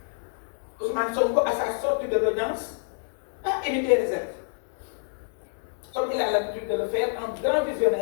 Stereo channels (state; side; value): silent; right; 60 dB below the other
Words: Ousmane Sonko, à sa sortie de l'audience, a émis des réserves. Comme il a l'habitude de le faire, en grand